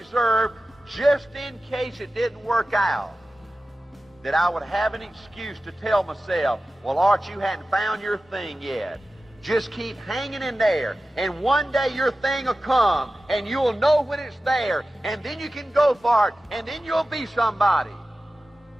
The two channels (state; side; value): normal; both; correlation 0.95